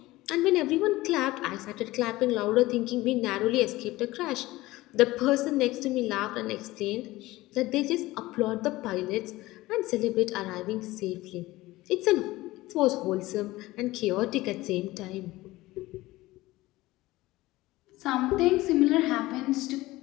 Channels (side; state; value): right; quieter; 18.5 dB